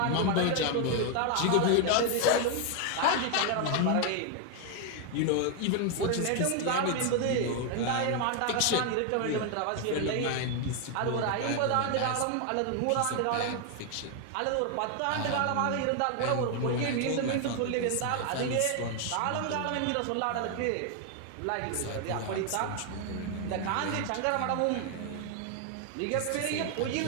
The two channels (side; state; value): both; different; correlation 0.01